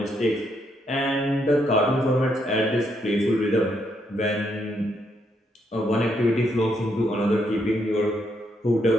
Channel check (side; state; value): both; normal; correlation 0.76